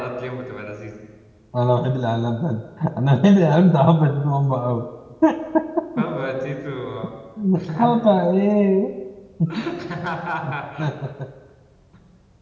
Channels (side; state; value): both; identical; correlation 1.00